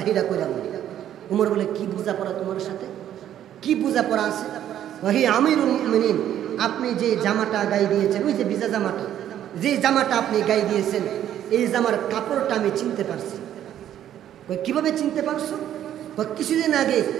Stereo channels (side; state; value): left; quieter; 11.0 dB